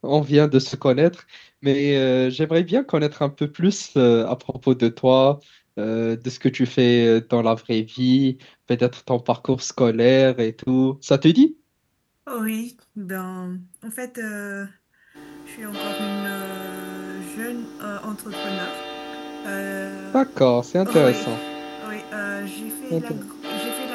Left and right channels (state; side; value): identical; both; correlation 1.00